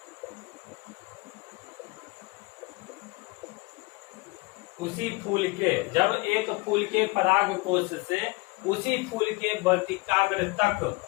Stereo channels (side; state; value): right; quieter; 24.7 dB